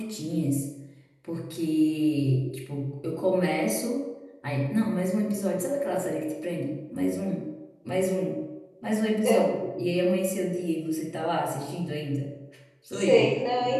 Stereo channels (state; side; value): identical; both; correlation 1.00